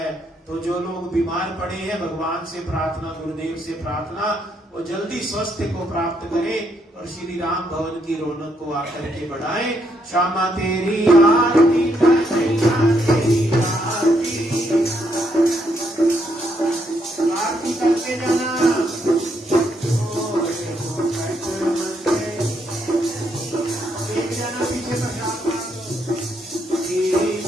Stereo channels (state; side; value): normal; both; correlation 0.75